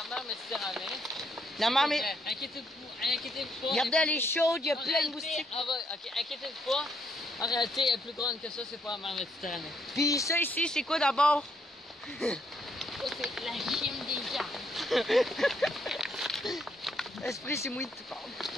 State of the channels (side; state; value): both; normal; correlation 0.73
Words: mer Méditerranée. La mer, mais. Inquiétez-vous pas. Regardez, elle est chaude, il y a En plein de réalité, moustiques. ok, inquiétez-vous pas. En réalité, elle est plus grande que ça, c'est pas la mer Méditerranée. Puis ça ici, c'est quoi d'abord? Ça, c'est la gym des arbres. Esprit, c'est moi qui te parle.